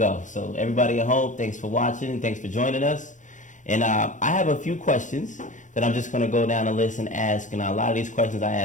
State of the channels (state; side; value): late; right; 0.36 ms